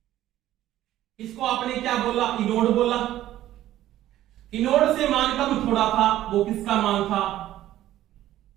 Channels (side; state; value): left; quieter; 13.6 dB